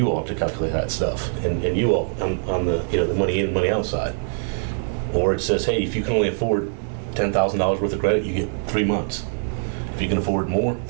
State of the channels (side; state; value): left; silent; digital silence